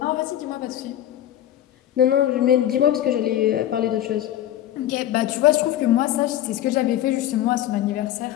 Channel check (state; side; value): quieter; right; 12.1 dB